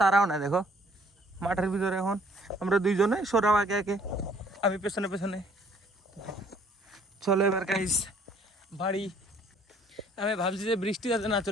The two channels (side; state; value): both; normal; correlation 0.60